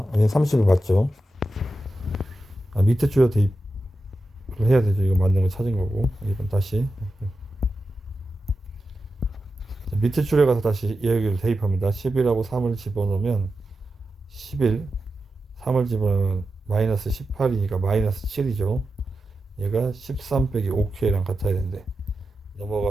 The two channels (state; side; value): normal; both; correlation 0.91